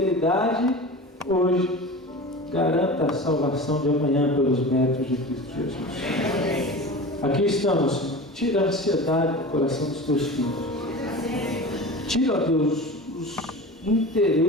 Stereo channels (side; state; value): both; normal; correlation 0.33